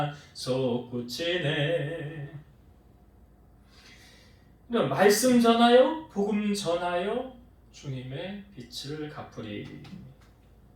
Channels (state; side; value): identical; both; correlation 1.00